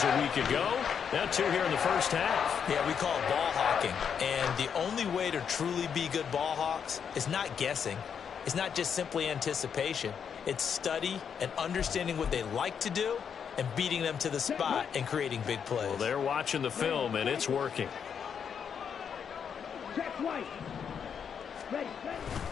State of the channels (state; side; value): quieter; right; 7.3 dB